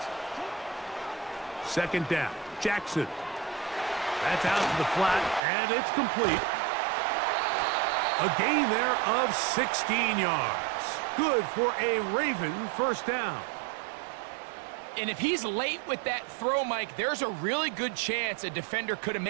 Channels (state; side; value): drops out; left; at 5.4 s